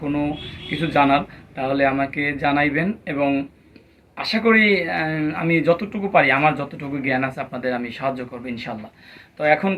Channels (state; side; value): identical; both; correlation 1.00